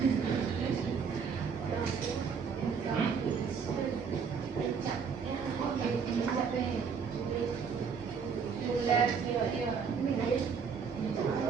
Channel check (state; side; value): quieter; left; 6.1 dB